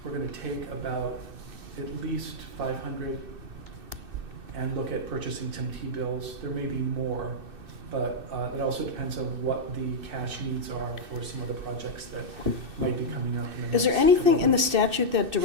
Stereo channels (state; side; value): late; left; 2.6 ms